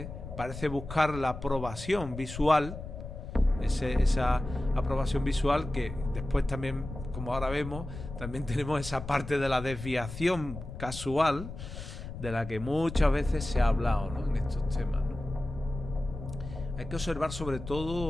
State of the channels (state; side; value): noise; left; rumble, 10 dB below the sound